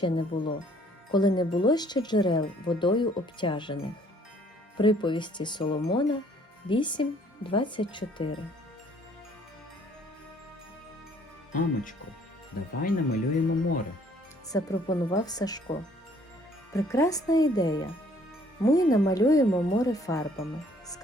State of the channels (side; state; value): both; normal; correlation 0.60